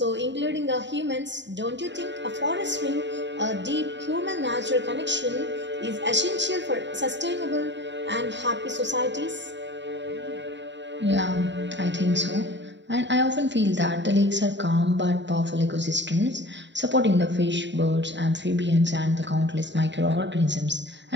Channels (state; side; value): late; left; 0.52 ms